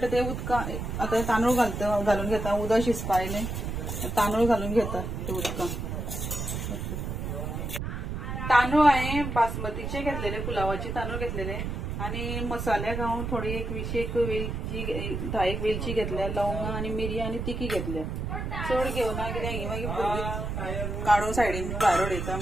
ते उदका आता तांदूळ घालून घेता. उदक शिजपा आयले तांदूळ घालून घेता ते उदकां. तांदूळ हांवें बासमतीचे घेतलेले, पुलावाचे तांदूळ घेतलेले आणि मसाल्याक हांव थोडी एक 20 वेलची 10 वेलची घेतल्या, लवंगा आणि मिरयां आणि तिखी घेतल्या. चड घेवना कित्याक ही मागीर भुरगीं काडून सायडीन भायर उडयता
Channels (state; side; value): noise; right; rumble, 4 dB below the sound